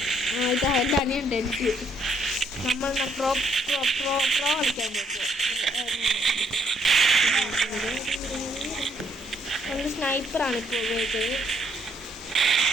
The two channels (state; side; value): normal; both; correlation 0.69